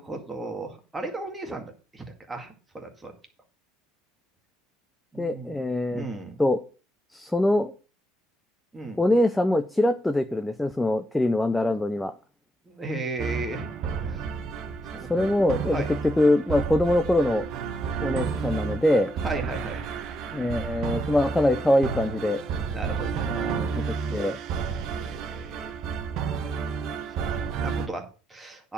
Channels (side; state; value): both; normal; correlation 0.81